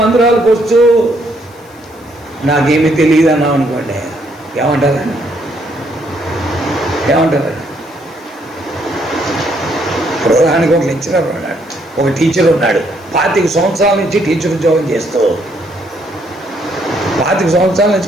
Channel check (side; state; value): left; noise; hiss, 28 dB below the sound